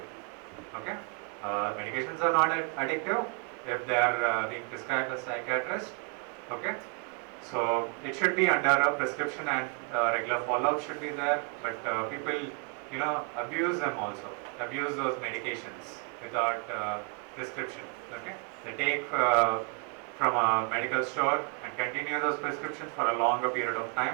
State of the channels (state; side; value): quieter; left; 39.5 dB